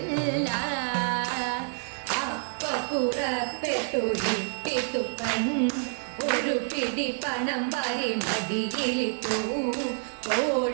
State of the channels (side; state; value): left; silent; digital silence